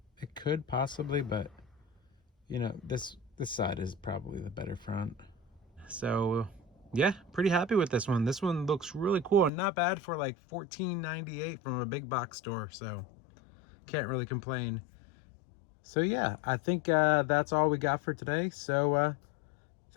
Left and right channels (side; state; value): right; drops out; at 9.5 s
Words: it could possibly, but you know, this side is probably the better front. So yeah, pretty happy with this one. This one looks really cool and not bad for like $14.98 from a big box store. So can't really complain. So yeah, I think that's all we got for today. So